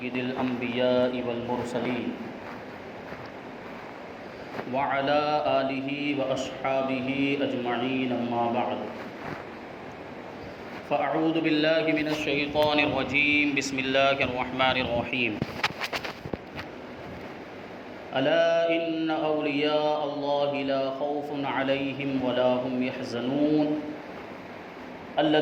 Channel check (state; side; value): identical; both; correlation 1.00